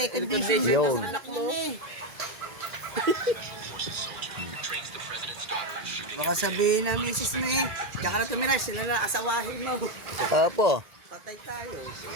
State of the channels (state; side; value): late; left; 1.8 ms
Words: Yun. na anak mo. Baka sabihin na misis mo eh. Diyan ka na tumira, sila na asawahin mo. Apo. Patay tayo.